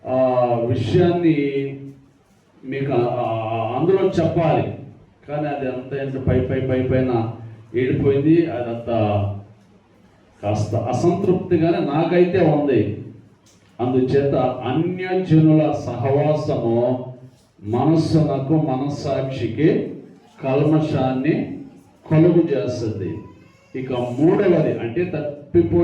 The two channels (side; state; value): both; identical; correlation 1.00